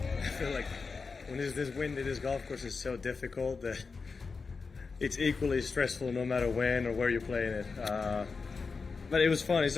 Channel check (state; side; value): quieter; right; 4.7 dB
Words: This wind at this golf course is so difficult that it's equally stressful no matter when or where you're playing it. But it was fun. It's